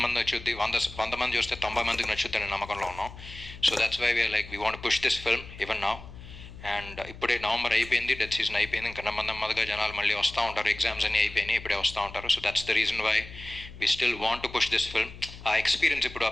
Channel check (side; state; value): left; noise; hum, 15 dB below the sound